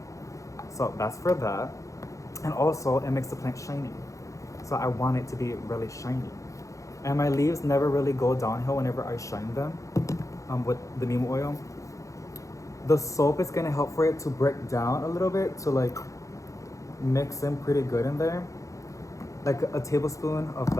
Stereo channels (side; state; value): right; late; 0.15 ms